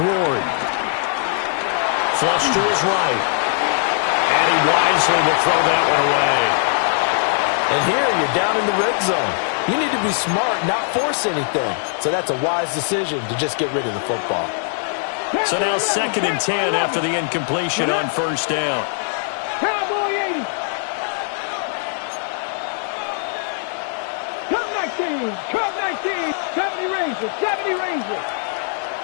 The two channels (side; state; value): right; silent; digital silence